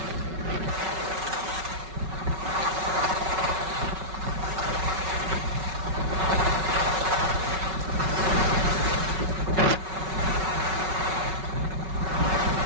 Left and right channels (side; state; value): left; late; 5.3 ms